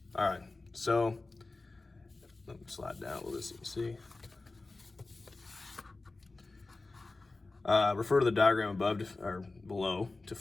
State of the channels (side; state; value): right; quieter; 3.4 dB